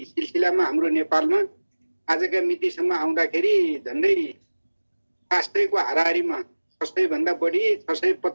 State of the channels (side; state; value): both; inverted; correlation -1.00